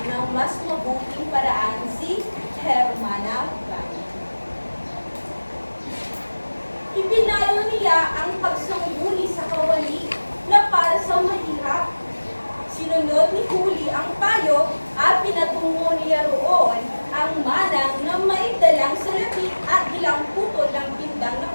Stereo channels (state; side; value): inverted; both; correlation -1.00